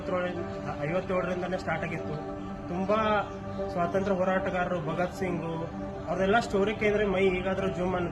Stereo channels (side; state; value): both; identical; correlation 1.00